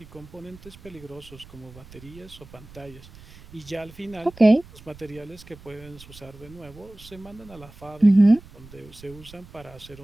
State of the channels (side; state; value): right; noise; rumble, 20 dB below the sound